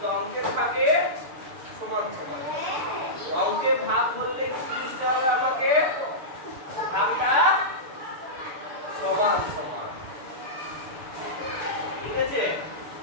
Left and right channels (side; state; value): left; late; 6.8 ms